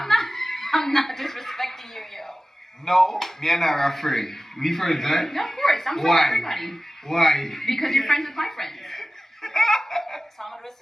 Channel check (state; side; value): normal; both; correlation 0.96